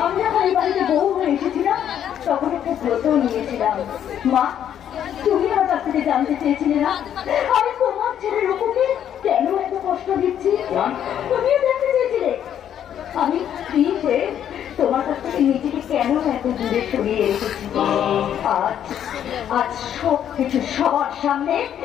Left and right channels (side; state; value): right; quieter; 9.8 dB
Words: আমি যখন এই বাড়িতে বউ হয়ে এসেছিলাম তখন একটা ব্রত নিয়েছিলাম। মা, তুমি আমার কাছ থেকে জানতে চেয়েছিলে না আমি তোমার ছেলের রূপকে কেন এত কষ্ট দিচ্ছি? তুমিও জানতে চেয়েছিলে আমি স্ত্রী হয়ে তোমার কাছ থেকে নিজেকে কেন এত দূরে সরিয়ে রেখেছি। আজ আজ সব কিছু সবার সামনে